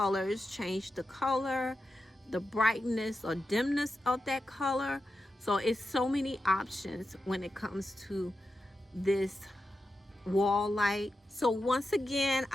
change the color, the brightness or dimness of that color. So it's so many options when it comes to this wall light. So once again,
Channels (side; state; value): both; normal; correlation 0.90